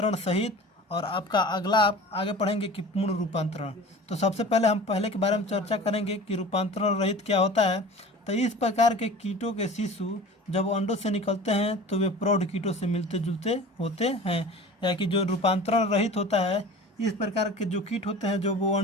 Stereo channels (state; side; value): normal; both; correlation 0.39